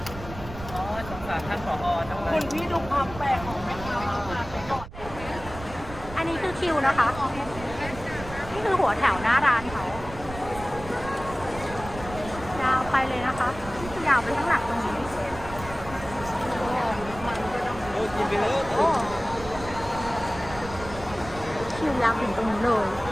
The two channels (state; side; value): noise; right; rumble, 13 dB below the sound